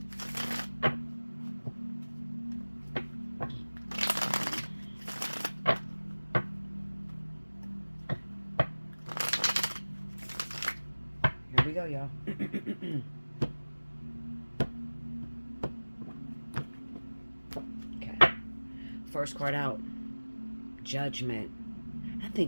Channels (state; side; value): inverted; both; correlation -1.00